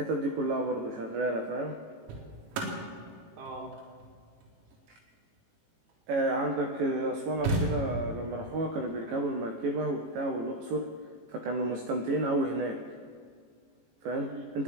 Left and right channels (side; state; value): left; late; 18 ms